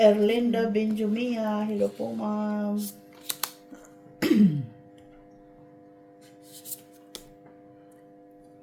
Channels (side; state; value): both; identical; correlation 1.00